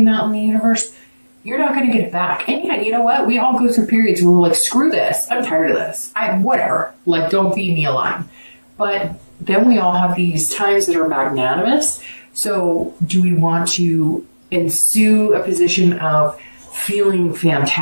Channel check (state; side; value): inverted; both; correlation -1.00